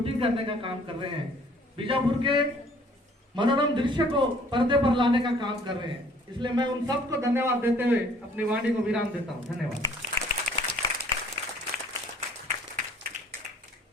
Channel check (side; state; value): both; normal; correlation 0.57